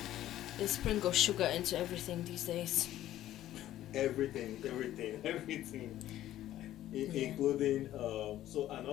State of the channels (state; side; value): quieter; right; 13.3 dB